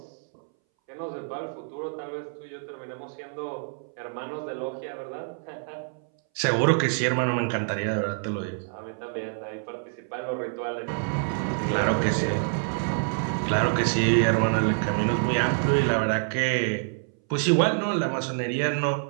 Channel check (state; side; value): silent; left; 60 dB below the other